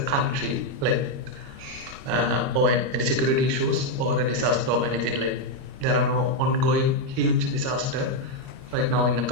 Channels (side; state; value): left; late; 30 ms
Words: country, like or any security issues or a disaster or anything like. There are no ongoing huge disaster right now in the